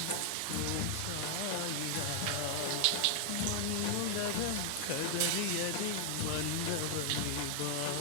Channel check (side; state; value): both; different; correlation 0.00